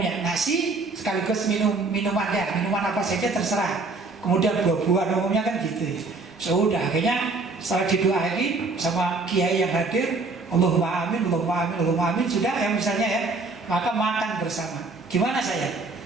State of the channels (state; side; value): quieter; left; 3.7 dB